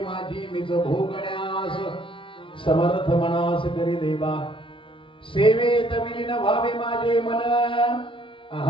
मिज भोगण्यास समर्थ मनास करी देवा. सेवेत विलीन व्हावे माझे मन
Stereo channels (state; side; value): late; right; 0.25 ms